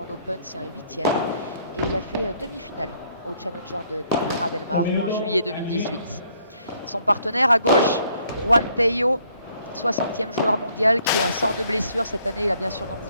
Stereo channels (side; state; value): both; inverted; correlation -0.66